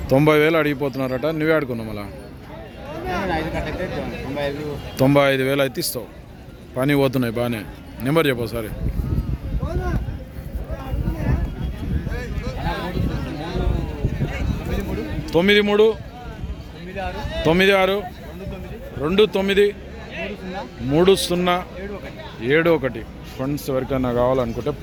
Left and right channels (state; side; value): identical; both; correlation 1.00